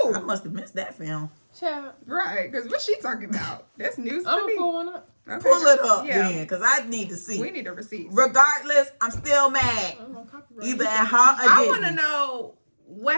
Who? I must have missed that film. Child, Right, because what she talking about? That's news to I'm me. pulling up. Okay, Pull it up yeah. then, because I need to see. We need a receipt. Regardless, I'm still mad. I'm on copyright. Either at her or I Disney. want to know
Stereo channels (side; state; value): both; inverted; correlation -1.00